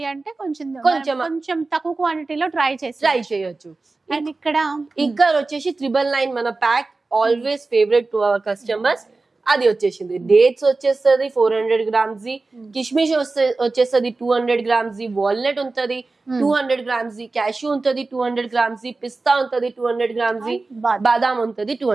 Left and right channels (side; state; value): left; quieter; 3.6 dB